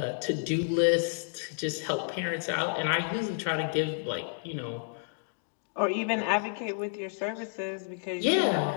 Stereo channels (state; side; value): silent; right; digital silence